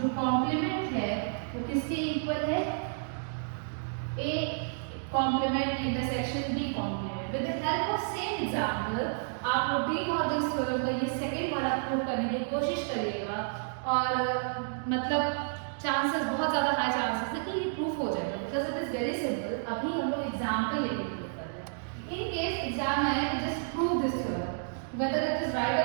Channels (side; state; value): left; silent; digital silence